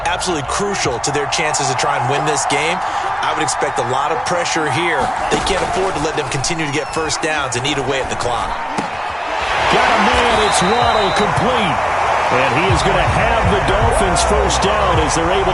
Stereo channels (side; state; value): both; identical; correlation 1.00